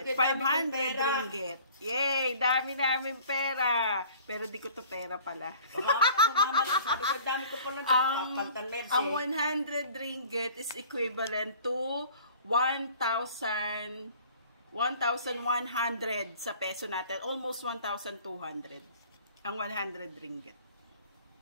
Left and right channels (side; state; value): both; inverted; correlation -0.49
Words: 500 ringgit. Yay! Dami namin pera. Pero di ko to pera pala. Ang 100 ringgit is equivalent to 1,100 sa peso natin. Almost 1,200. Ang 100 ringgit.